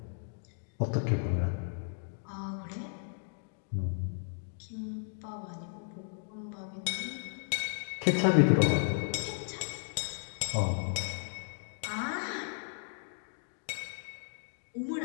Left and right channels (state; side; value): silent; right; digital silence